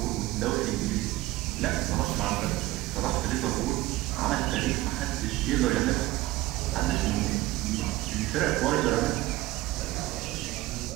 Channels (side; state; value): left; quieter; 17.5 dB